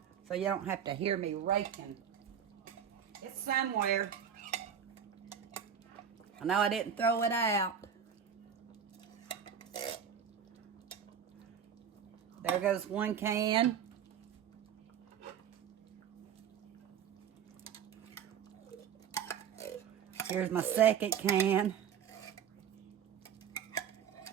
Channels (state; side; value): quieter; left; 8.1 dB